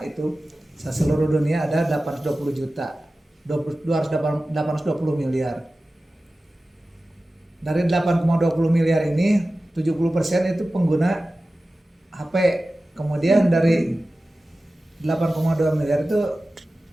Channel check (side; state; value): both; normal; correlation 0.95